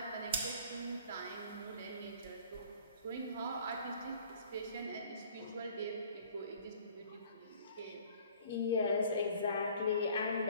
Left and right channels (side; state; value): both; inverted; correlation -0.52